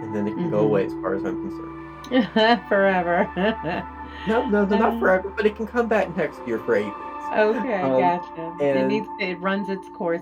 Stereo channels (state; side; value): identical; both; correlation 1.00